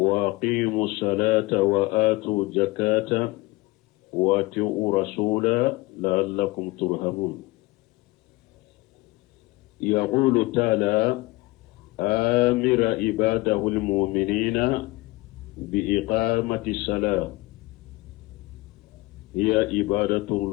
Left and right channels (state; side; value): quieter; right; 21.7 dB